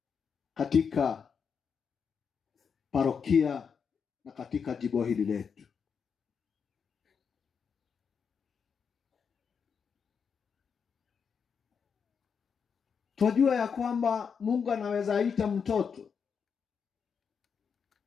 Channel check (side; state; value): right; quieter; 6.4 dB